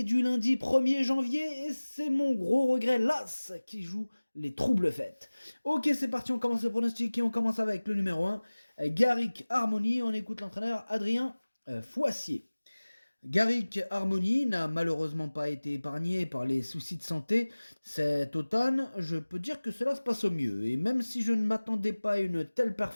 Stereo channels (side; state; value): both; inverted; correlation -1.00